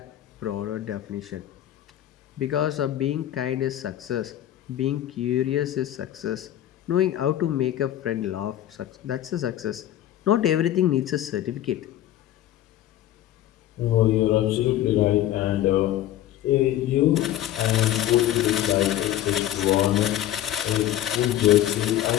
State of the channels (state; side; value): quieter; right; 12.6 dB